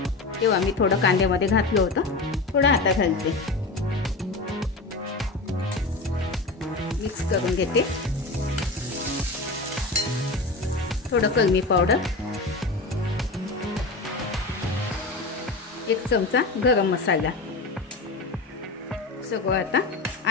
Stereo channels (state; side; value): quieter; right; 3.3 dB